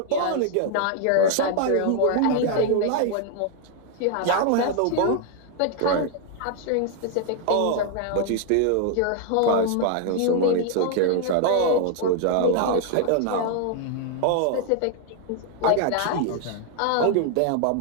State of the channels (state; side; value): different; both; correlation 0.00